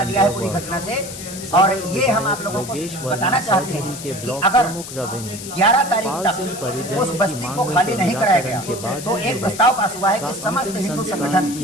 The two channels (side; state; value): left; noise; hiss, 11 dB below the sound